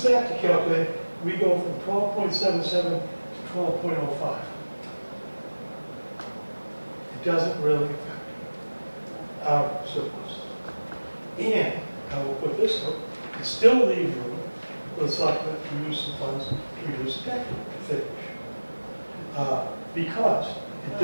that to calculate, we go from 12.77 to 12.05. It doesn't really affect our surplus. And I will put this up, it still leaves room for the selectmen to use some funds to reduce the tax rate to finish. Because it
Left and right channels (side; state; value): both; inverted; correlation -1.00